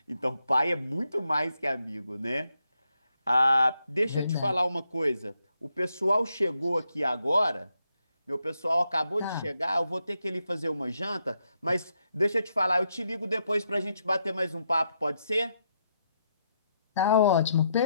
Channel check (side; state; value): both; inverted; correlation -0.80